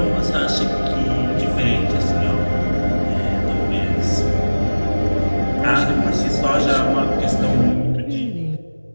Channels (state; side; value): inverted; both; correlation -1.00